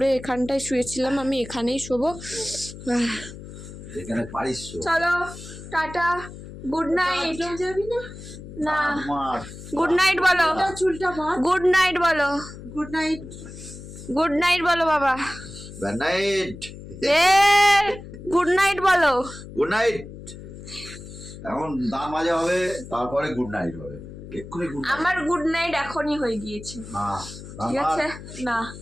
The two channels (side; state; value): left; noise; hum, 14 dB below the sound